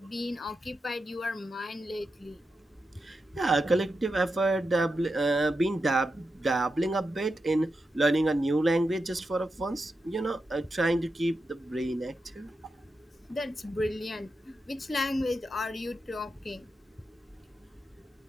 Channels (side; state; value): both; normal; correlation 0.88